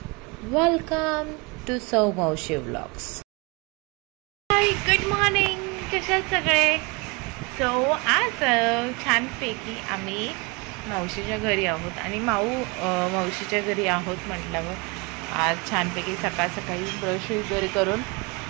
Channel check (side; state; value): left; quieter; 28.4 dB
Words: Welcome to Sau Mavshi vlogs. High, good morning. कशा सगळे? सो आज छानपैकी आम्ही मावशीच्या घरी आहोत आणि मावशीच्या घरी आहोत म्हटल्यावर आज छानपैकी सकाळ सकाळी ब्रश वगैरे करून